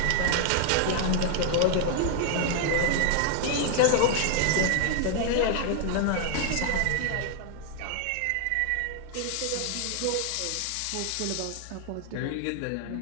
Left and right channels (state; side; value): different; both; correlation 0.00